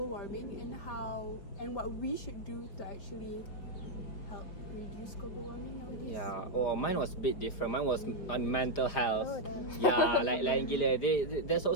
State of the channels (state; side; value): late; right; 4.9 ms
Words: warming and what we should do to actually help reduce global warming nowadays. Yeah. Oh, mine was a bit different. Mine was on mental health. Oh, damn. Yeah, like lain gila. There's